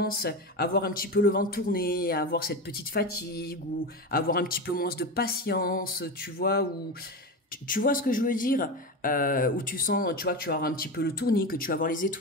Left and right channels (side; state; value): both; normal; correlation 0.21